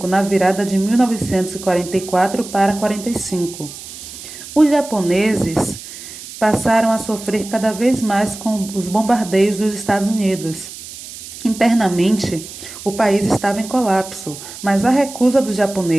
na virada de 1944 para 45. Os japoneses passaram a sofrer cada vez mais com os bombardeios dos Estados Unidos. Internamente, o país estava em colapso, mas a recusa dos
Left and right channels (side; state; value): right; noise; hiss, 13 dB below the sound